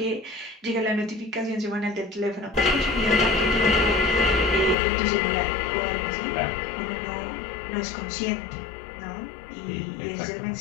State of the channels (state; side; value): drops out; right; at 4.8 s